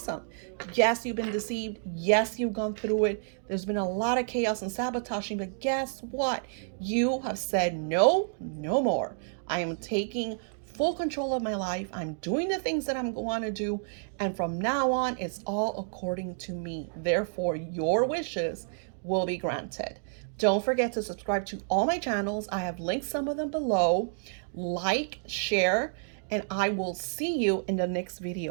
Yes, you've been deceived. Yes, you've gone through it. There's been a lot of chaos and sabotaging. But guess what? You have said no, no more. I am taking full control of my life. I'm doing the things that I'm going to do. And from now on, it's all according to me. Therefore, your wishes will be granted. Don't forget to subscribe to all my channels. I have linked some of them below. Like, share, and I will see you in the next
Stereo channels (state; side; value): silent; left; digital silence